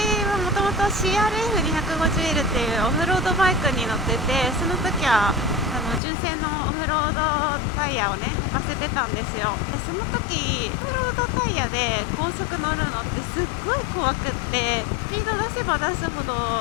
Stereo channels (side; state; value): right; drops out; at 6.0 s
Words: はもともと CRF250L っていうオフロードバイクに乗ってて、その時は純正のオフロードタイヤをね履かせてたんですよ。でその時オフロードタイヤで高速乗るのってすっごい怖くって、スピード出せば出すほど